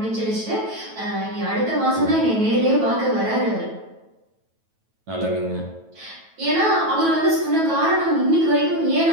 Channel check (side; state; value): left; late; 9.2 ms